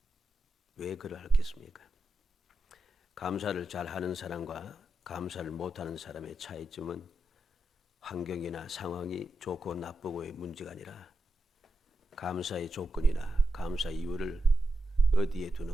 왜 그러하겠습니까? 감사를 잘하는 사람과 감사를 못하는 사람의 차이점은 환경이나 상황이 좋고 나쁘고의 문제가 아니라 감사의 조건이나 감사 이유를 어디에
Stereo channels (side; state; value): both; normal; correlation 0.88